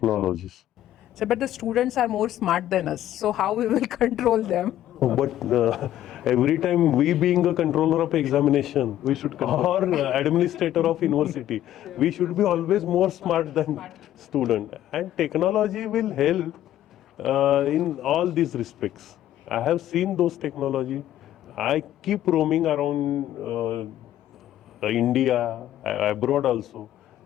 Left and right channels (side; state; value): right; quieter; 12.5 dB